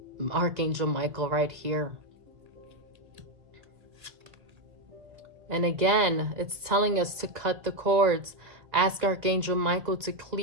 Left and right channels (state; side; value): late; left; 1.9 ms